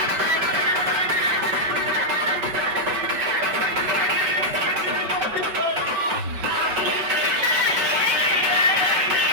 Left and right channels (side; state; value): left; late; 5.2 ms